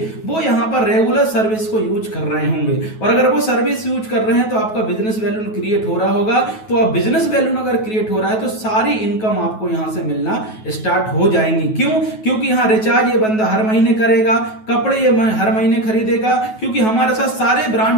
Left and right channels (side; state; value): right; late; 9.3 ms